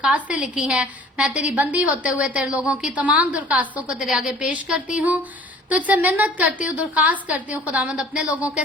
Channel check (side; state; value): both; normal; correlation 0.50